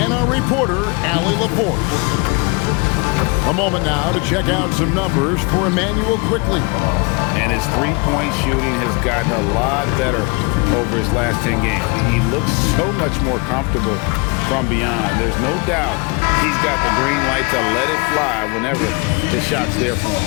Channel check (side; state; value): right; quieter; 29.4 dB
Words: our reporter, Allie LaForce. A moment now to check out some numbers for Emmanuel Quickley. And his three-point shooting has gotten a lot better over his last 10 games. He looks so much more comfortable from beyond. There's no doubt he's got the green light to let it fly whenever the shot's there for